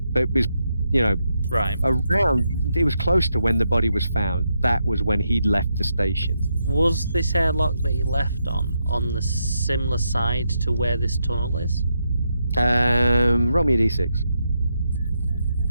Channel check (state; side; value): inverted; both; correlation -0.82